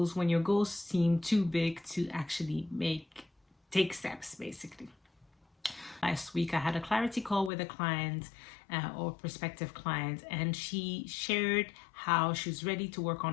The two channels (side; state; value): right; drops out; at 7.5 s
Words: when your goals seem too big to actually take steps, basically. Last week, I had a clarity call with a client or prospective client, and she shared how she was ready to work